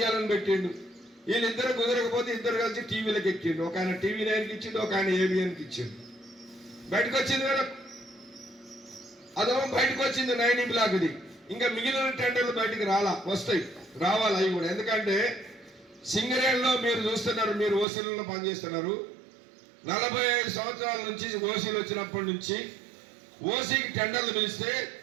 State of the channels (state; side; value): drops out; left; at 17.9 s